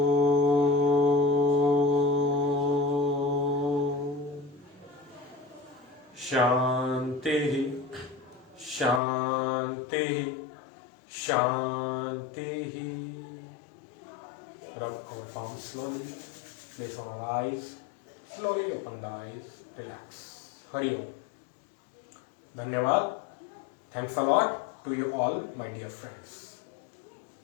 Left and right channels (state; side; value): drops out; right; at 9.0 s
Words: Shanti, Shanti, Shanti. Rub our palms slowly. Place on our eyes. Slowly open the eyes. Relax. Hari Om. Dhanyavad. Thanks a lot to you all, my dear friends.